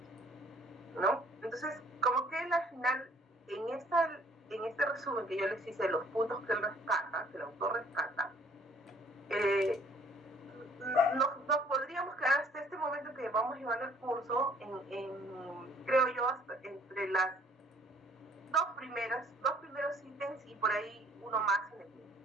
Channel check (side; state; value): both; normal; correlation 0.58